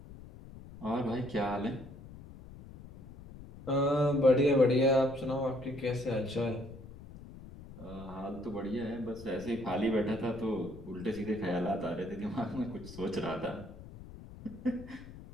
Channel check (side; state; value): left; noise; rumble, 16 dB below the sound